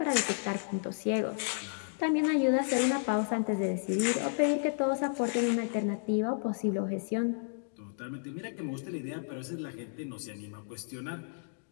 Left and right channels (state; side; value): silent; right; digital silence